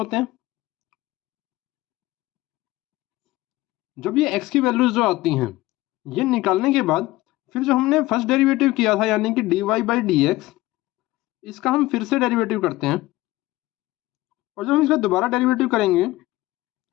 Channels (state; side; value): quieter; right; 18.3 dB